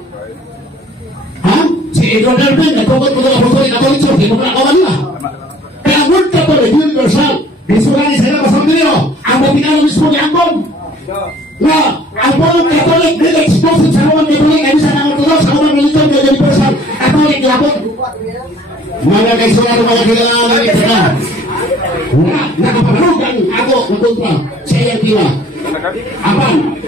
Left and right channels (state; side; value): normal; both; correlation 0.54